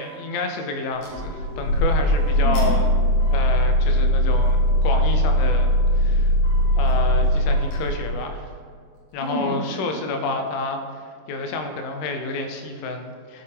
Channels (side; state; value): right; late; 26 ms